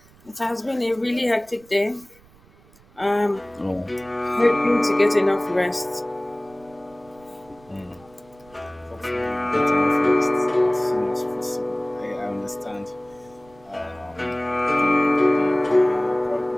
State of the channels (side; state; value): right; noise; rumble, 28 dB below the sound